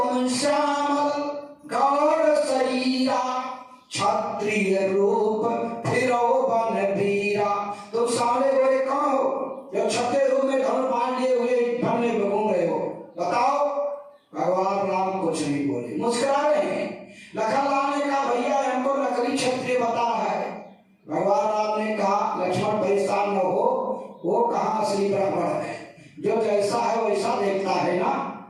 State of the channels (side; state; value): both; identical; correlation 1.00